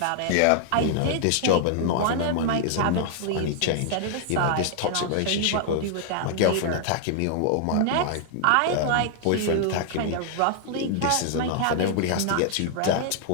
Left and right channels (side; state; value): both; different; correlation 0.00